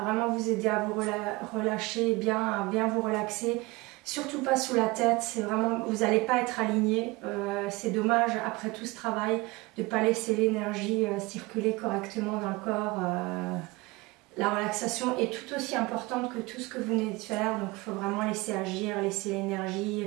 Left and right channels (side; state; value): left; quieter; 23.0 dB